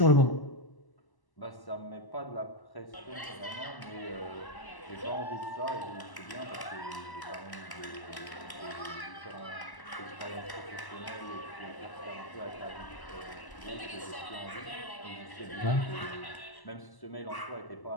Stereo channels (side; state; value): right; late; 1.0 ms